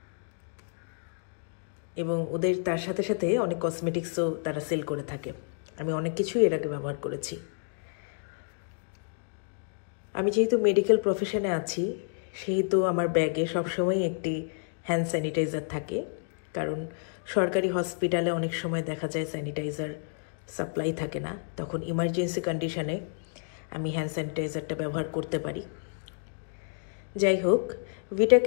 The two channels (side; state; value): right; silent; digital silence